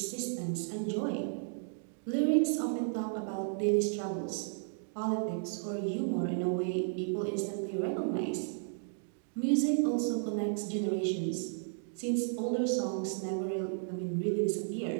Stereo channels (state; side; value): silent; left; digital silence